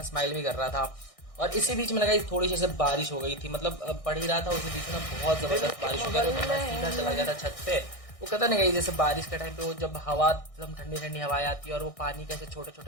स्माइल भी कर रहा था। और इसी बीच में लगा थोड़ी सी बारिश हो गई थी, मतलब पढ़ ही रहा था, उसी बीच में बहुत जबरदस्त बारिश हो गया। तो मैं सीधा चला गया था छत पे। वो कहता नहीं गई, जैसे बारिश के टाइम पे वो जब हवा एकदम ठंडी ठंडी हवाएं आती है और वो पानी कैसे छोटा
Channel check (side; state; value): right; late; 1.6 ms